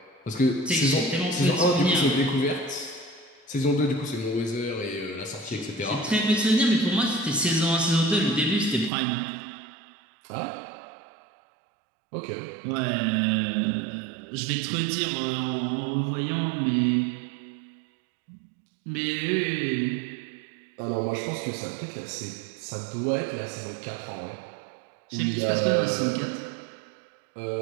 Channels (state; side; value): drops out; left; at 8.9 s